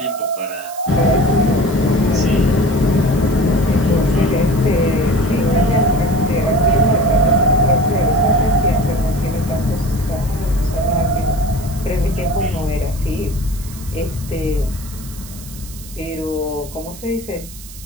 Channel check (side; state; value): right; noise; hiss, 16 dB below the sound